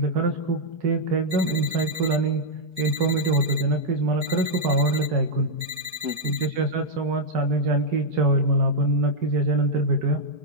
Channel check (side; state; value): left; late; 4.6 ms